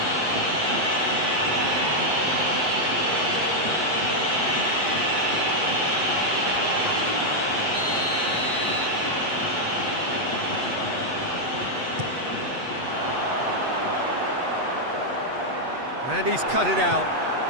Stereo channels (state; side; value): late; left; 8.1 ms